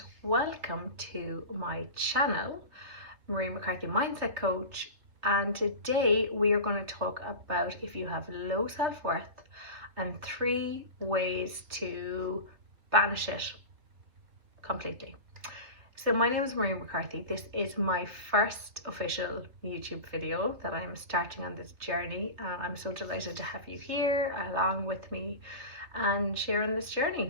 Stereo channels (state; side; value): late; left; 3.1 ms